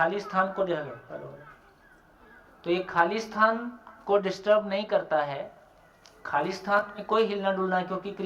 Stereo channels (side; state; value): both; identical; correlation 1.00